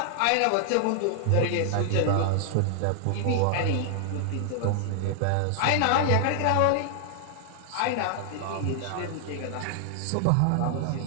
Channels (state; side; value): different; both; correlation 0.00